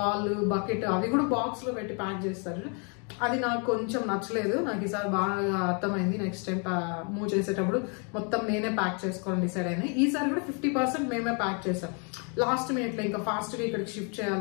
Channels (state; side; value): quieter; right; 37.2 dB